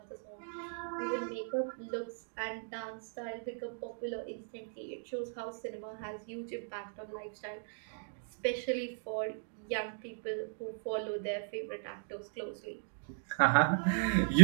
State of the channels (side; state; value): left; silent; digital silence